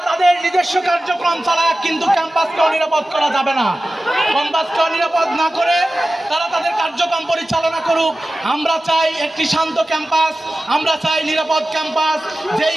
তাদের নিজস্ব কার্যক্রম চালাক, কিন্তু ক্যাম্পাসকেও নিরাপদ করা যাবে না। ক্যাম্পাসকেও নিরাপদ না করে তারা তাদের কার্যক্রম পরিচালনা করুক। আমরা চাই একটি শান্ত ক্যাম্পাস, আমরা চাই নিরাপদ ক্যাম্পাস, যেই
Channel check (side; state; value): both; normal; correlation 0.95